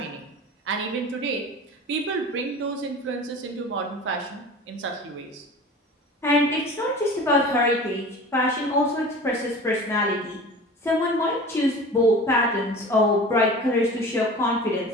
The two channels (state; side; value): normal; both; correlation 0.38